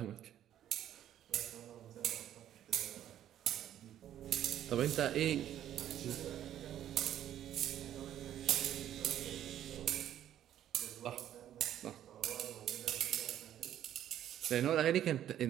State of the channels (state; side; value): quieter; left; 11.3 dB